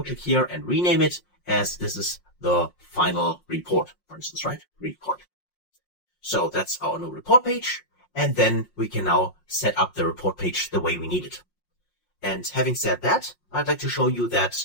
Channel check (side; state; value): right; late; 5.6 ms